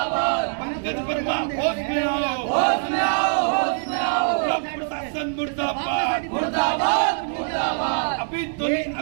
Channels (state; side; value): silent; left; digital silence